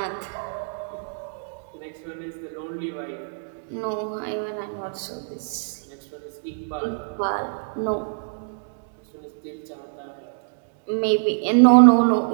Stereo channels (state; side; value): silent; left; digital silence